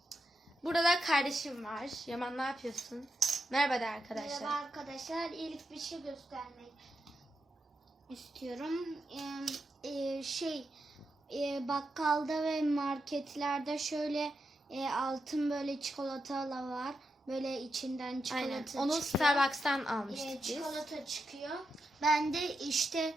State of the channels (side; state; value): both; normal; correlation 0.86